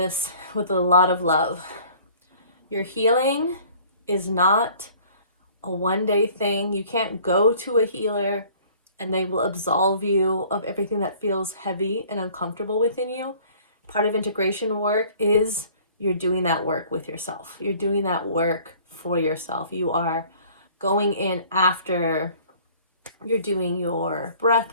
with a lot of love, your healing is not a one-day thing. You can't go to a healer and they will absolve you of everything that feels heavy and uncomfortable within you. Part of integration work is you're doing that work with yourself. You're doing that work for yourself. You are going in after you're doing your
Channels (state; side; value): inverted; both; correlation -0.53